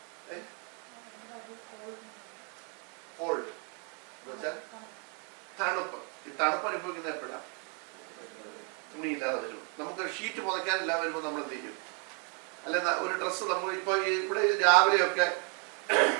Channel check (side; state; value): left; quieter; 37.0 dB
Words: കോൾഡ് എന്നുവെച്ചാൽ തണുപ്പ്. ഈ തണുപ്പ് അനുഭവിക്കുന്ന എപ്പോഴാണ്? തുണിയില്ലാതെ വരും. നമുക്ക് ഷീറ്റ് പുതയ്ക്കാനില്ലാതെ വരുമ്പോൾ നമ്മൾ എന്ത് ചെയ്യും? അല്ലെ, ഒരു ഡ്രസ്സ് നമ്മൾ ഇപ്പൊ ഇവിടെ രാവിലെയൊക്കെ